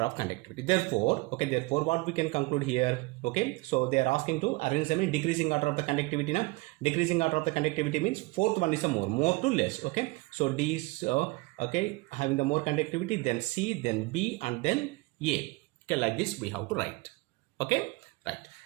of conductivity. Therefore, okay, therefore what we can conclude here, okay, so they are asking to arrange them in decreasing order of the conductivity. Now decreasing order of the conductivity means fourth one is a more to less. Okay, so D is okay, having the more conductivity, then C, then B, and then A. Okay, like this we have to write. Okay, right.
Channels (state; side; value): quieter; left; 24.2 dB